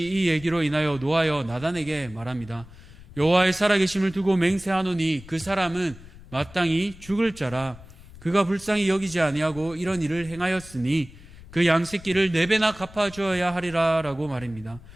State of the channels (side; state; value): left; noise; rumble, 19 dB below the sound